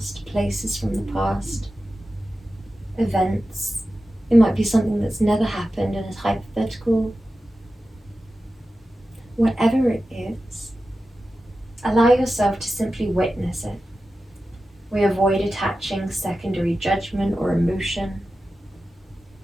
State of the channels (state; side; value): normal; both; correlation 0.93